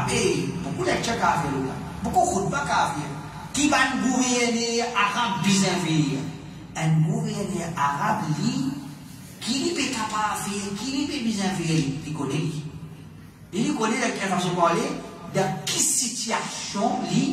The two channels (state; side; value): identical; both; correlation 1.00